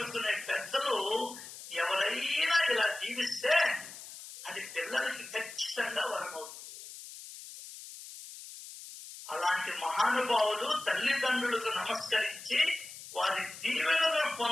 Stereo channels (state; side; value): noise; left; hiss, 14 dB below the sound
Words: పెద్దలు ఎవరైనా ఇలా జీవిస్తే అది పిల్లలకి ఖచ్చితంగా వరమవుతుంది. అలాంటి మహానుభావులు తల్లిదండ్రులకు నమస్కరించి వారి దీవెనలను